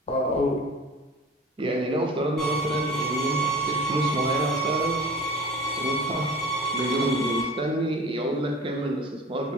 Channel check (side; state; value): both; normal; correlation 0.41